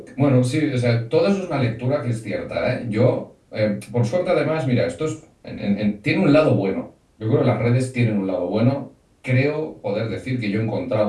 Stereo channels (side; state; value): both; identical; correlation 1.00